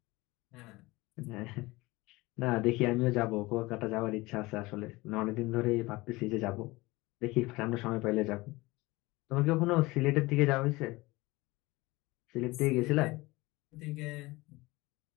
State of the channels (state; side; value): quieter; right; 21.5 dB